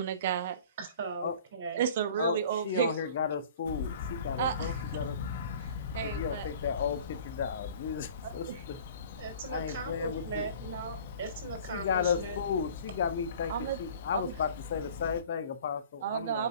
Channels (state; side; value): inverted; both; correlation -0.46